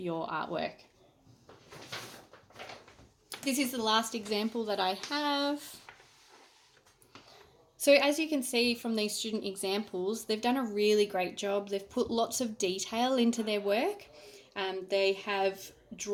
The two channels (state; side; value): identical; both; correlation 1.00